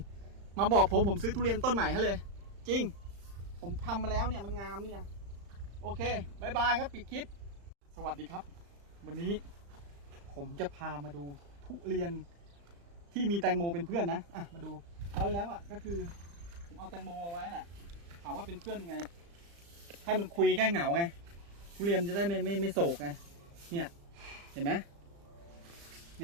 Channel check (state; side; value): late; left; 35 ms